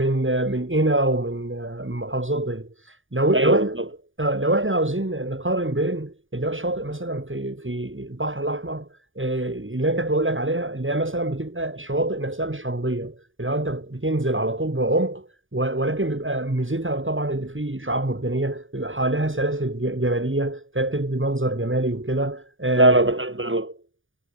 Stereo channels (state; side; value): late; left; 0.57 ms